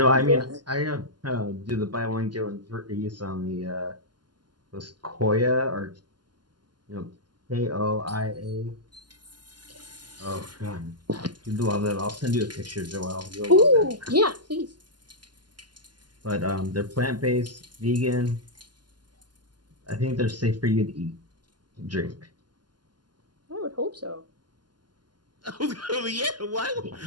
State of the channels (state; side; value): late; left; 0.71 ms